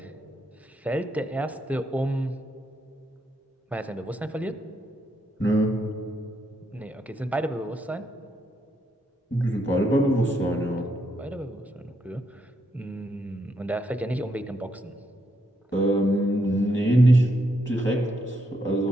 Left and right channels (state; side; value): normal; both; correlation 0.78